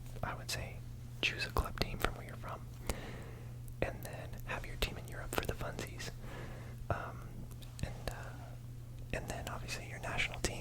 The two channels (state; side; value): identical; both; correlation 1.00